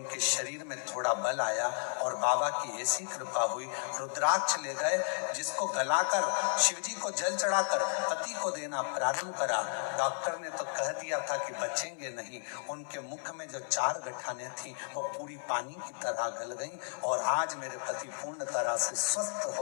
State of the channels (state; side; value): silent; right; 56 dB below the other